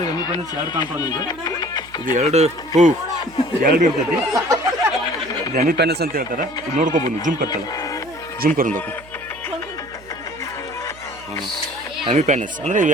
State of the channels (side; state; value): right; noise; hum, 22 dB below the sound